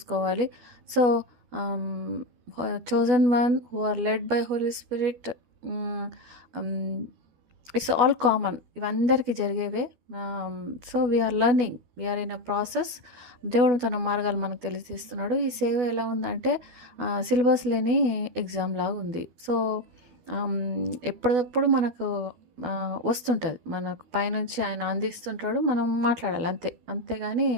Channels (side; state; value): left; late; 12 ms